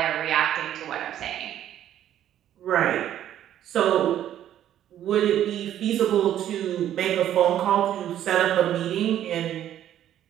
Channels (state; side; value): quieter; left; 11.3 dB